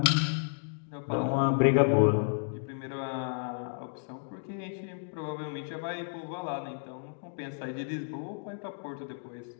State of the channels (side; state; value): right; silent; digital silence